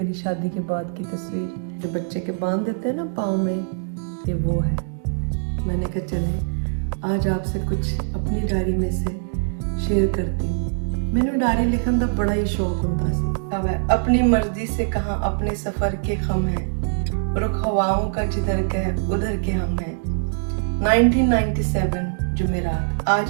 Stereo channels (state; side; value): silent; left; digital silence